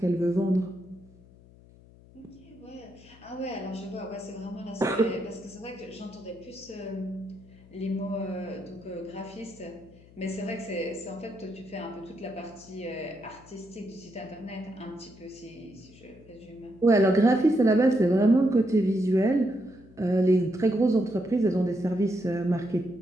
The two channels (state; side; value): noise; left; hum, 24 dB below the sound